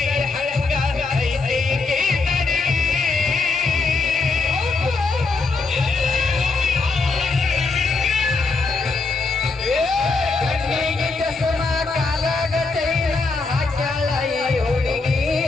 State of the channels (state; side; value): quieter; right; 3.9 dB